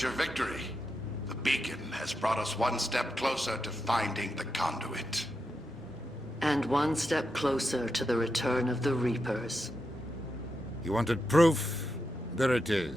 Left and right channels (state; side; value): normal; both; correlation 0.86